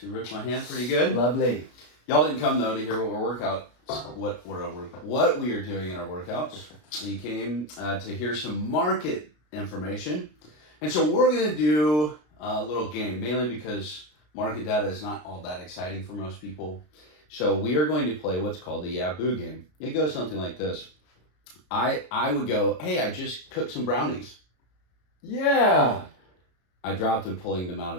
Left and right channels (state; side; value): late; right; 33 ms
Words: she ripped my hand pretty good. Lovely. Y'all didn't come though to hear what we are doing in our workouts. You came to hear some market information, and so we're gonna do a little game, mainly because market data is not all that exciting for most people. So we are going to play what's called the Yaboo game. It goes something like this. I would go, hey, I just cooked some brownies. Yeah. I dropped them pulling them out